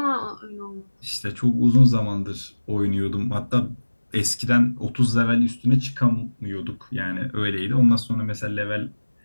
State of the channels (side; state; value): both; inverted; correlation -1.00